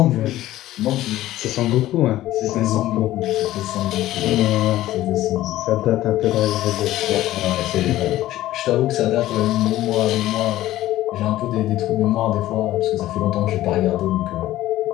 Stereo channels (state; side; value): quieter; right; 14.9 dB